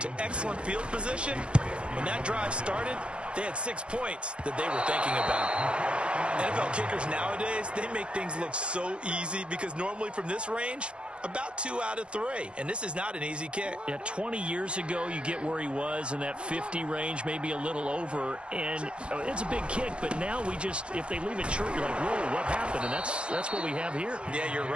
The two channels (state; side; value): late; left; 0.057 ms